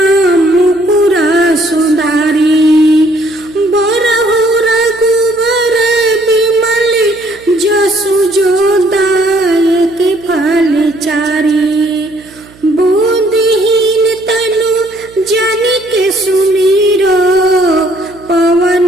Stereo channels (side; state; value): right; noise; hum, 25 dB below the sound